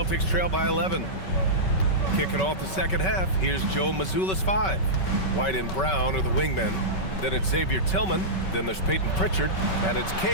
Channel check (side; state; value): right; late; 5.3 ms